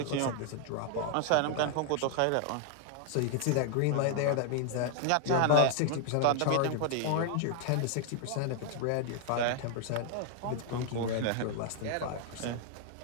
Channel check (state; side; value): different; both; correlation 0.00